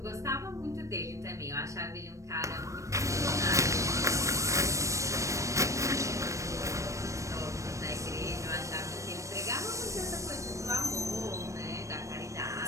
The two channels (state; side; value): late; left; 0.15 ms